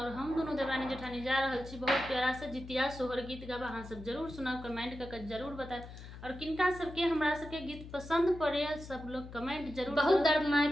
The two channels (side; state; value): left; noise; hum, 13 dB below the sound